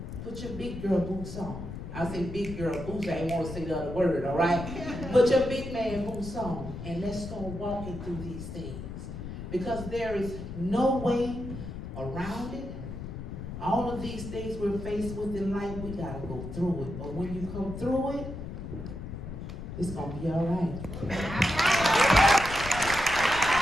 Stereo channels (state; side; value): noise; left; rumble, 8 dB below the sound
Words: Put your big girl boots on. I say big girl boots. I ain't want to say the other word, all right? Put your big man boots on. And let's start walking through these things. Because there is no way around it. All of these things we're faced with in life, we gotta go through it. But when you come through it, it's gonna be all right.